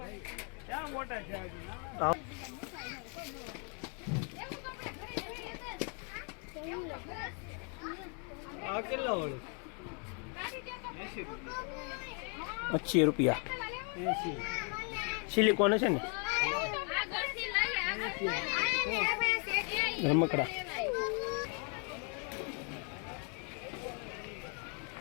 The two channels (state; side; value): quieter; right; 38.7 dB